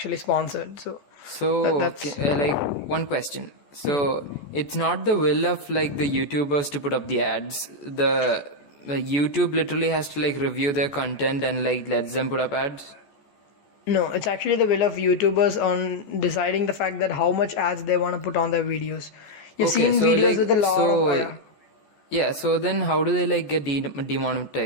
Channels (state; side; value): late; right; 14 ms